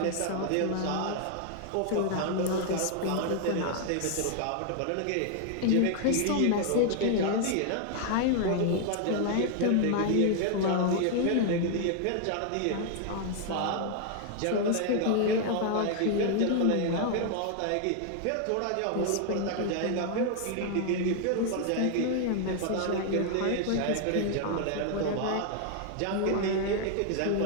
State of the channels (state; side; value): different; both; correlation 0.00